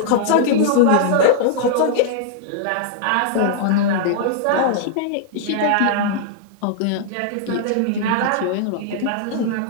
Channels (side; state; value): both; different; correlation -0.01